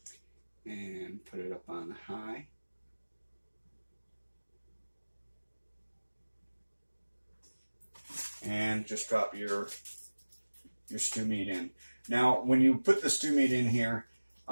and put it up on high. And just drop your stew meat in. Now, when you put the stew meat in here,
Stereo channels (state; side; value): inverted; both; correlation -1.00